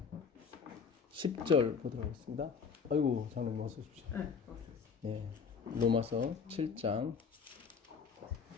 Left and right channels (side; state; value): right; quieter; 5.8 dB